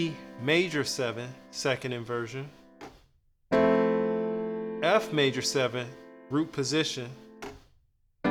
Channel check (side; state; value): both; identical; correlation 1.00